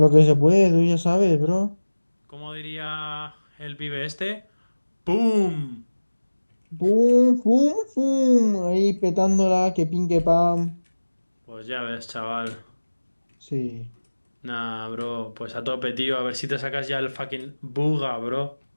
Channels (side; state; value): both; inverted; correlation -1.00